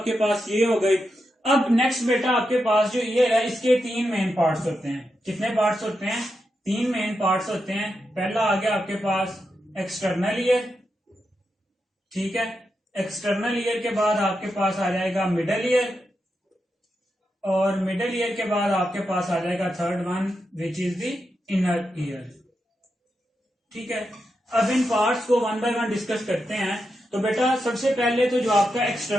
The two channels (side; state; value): both; normal; correlation 0.86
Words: पास ये हो गई। अब नेक्स्ट बेटा आपके पास जो ईयर है इसके तीन मेन पार्ट्स होते हैं। कितने पार्ट्स होते हैं? तीन मेन पार्ट्स होते हैं। पहला आ गया आपके पास एक्सटर्नल ईयर, ठीक है, एक्सटर्नल ईयर के बाद आपके पास आ जाएगा मिडल ईयर, और मिडल ईयर के बाद आपके पास आ जाएगा third one which is the inner ear. ठीक है, अब इन पार्ट्स को वन बाय वन डिस्कस करते हैं। तो बेटा सबसे पहले तो जो आपका